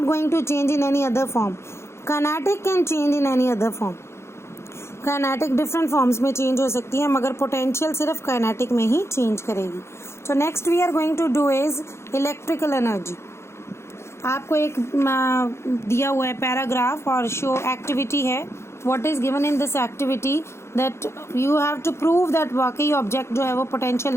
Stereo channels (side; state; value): right; late; 0.13 ms